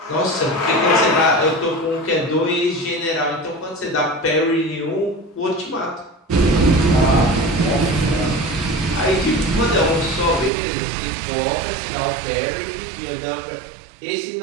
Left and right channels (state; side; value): drops out; left; at 10.5 s